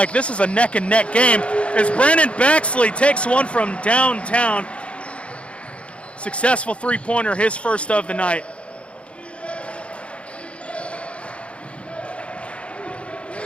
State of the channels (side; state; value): right; late; 0.060 ms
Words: this is a neck-and-neck game as Brandon Bexley takes one from downtown. Successful three-pointer, his first of the night.